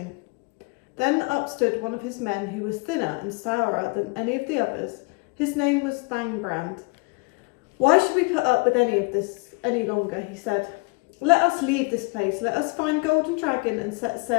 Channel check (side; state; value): right; quieter; 28.6 dB